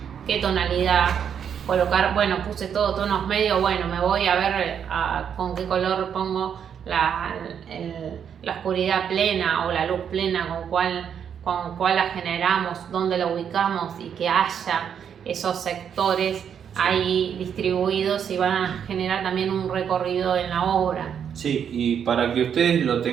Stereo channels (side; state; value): left; quieter; 8.1 dB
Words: qué tonalidad colocar. Bueno, puse todo tonos medios, bueno, me voy a ver con qué color pongo la oscuridad plena o la luz plena, con cuál la generamos, dónde la ubicamos y que haya esos sectores ahí distribuidos y van a generar también un recorrido en la obra. Sí, y para que ustedes lo